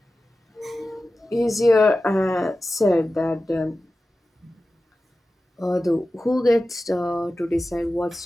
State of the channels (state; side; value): normal; both; correlation 0.94